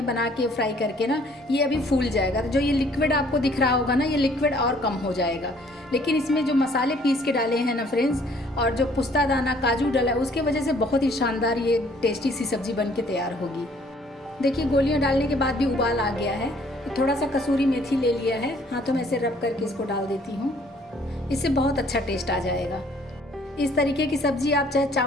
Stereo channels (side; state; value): both; normal; correlation 0.60